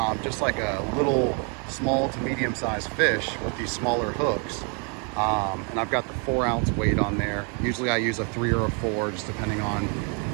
just like a little small to medium sized fish with these smaller hooks. And I've got the 4-ounce weight on there. Usually I use a 3 or a 4, just depending on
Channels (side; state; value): left; quieter; 37.1 dB